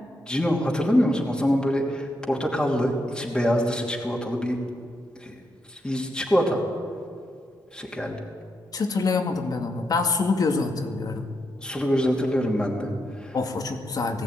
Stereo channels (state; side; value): normal; both; correlation 0.82